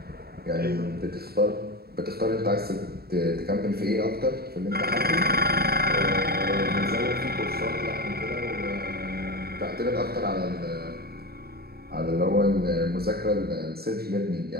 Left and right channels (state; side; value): late; left; 0.45 ms